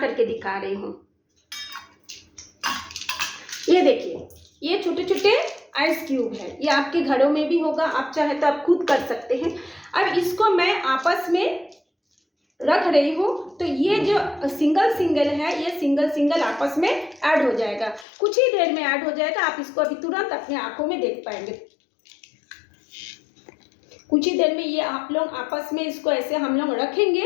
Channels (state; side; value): drops out; right; at 18.1 s